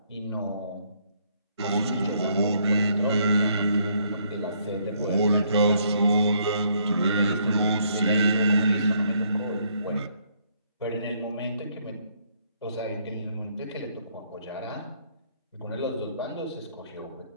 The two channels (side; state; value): both; inverted; correlation -0.69